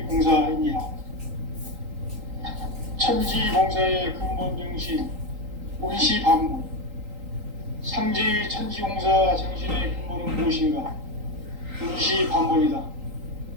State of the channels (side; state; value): left; late; 3.8 ms